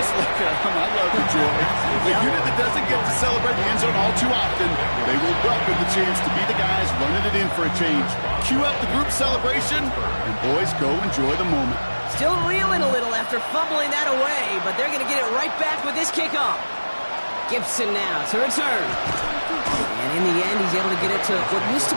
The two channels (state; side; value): inverted; both; correlation -1.00